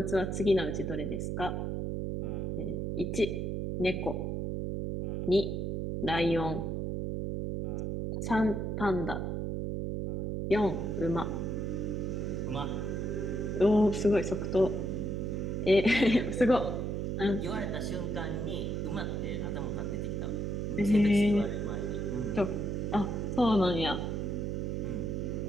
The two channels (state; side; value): noise; right; hum, 1 dB below the sound